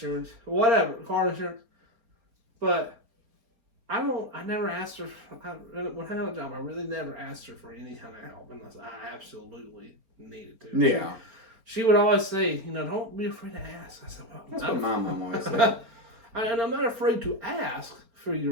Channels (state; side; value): late; left; 4.3 ms